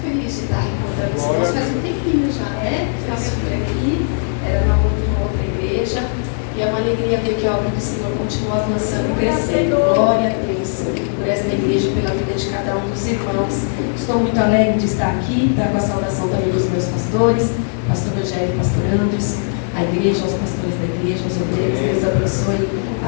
feliz de estar encontrando os irmãos. Faz um tempinho já, né? Eu estive aqui, era uma outra igreja. E é uma alegria ver que a obra do Senhor continua avançando e crescendo. Glória a Deus por esta igreja e pela vida de cada um dos irmãos. Estou muito alegre de estar aqui, com a saudação também dos meus pastores, pastor Rogério e pastor Andres, a igreja, aos pastores da igreja, aos obreiros. Deus abençoe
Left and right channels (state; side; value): silent; right; digital silence